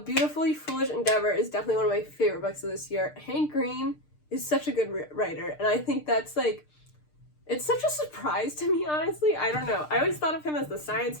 Foolish Endeavor is definitely one of my favorite books of this year. Hank Green is such a good writer, and I think that's, like, it's such a surprise to me, honestly. I don't know. I always thought of him as the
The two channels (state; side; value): late; right; 6.6 ms